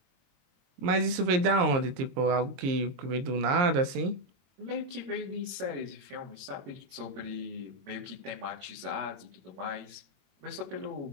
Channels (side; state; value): left; late; 22 ms